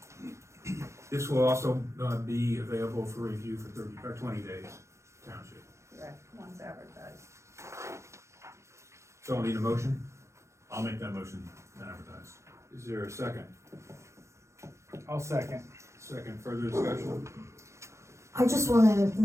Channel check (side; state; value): left; late; 0.14 ms